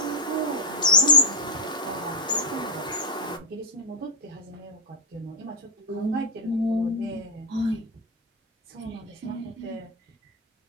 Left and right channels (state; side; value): normal; both; correlation 0.00